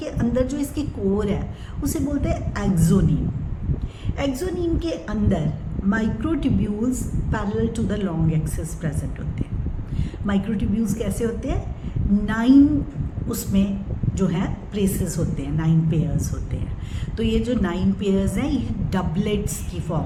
अंदर जो इसकी कोर है उसे बोलते हैं एक्सोनीम। एक्सोनीम के अंदर microtubules parallel to the long axis present होते हैं। माइक्रोट्यूब्यूल्स कैसे होते हैं, 9 उसमें जो है प्लेसेस होते हैं, 9 पेयर्स होते हैं। तो ये जो 9 पेयर्स हैं ये डबलेट्स की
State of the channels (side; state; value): both; identical; correlation 1.00